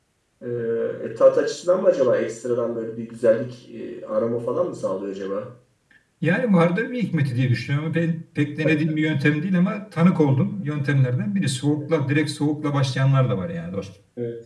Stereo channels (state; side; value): identical; both; correlation 1.00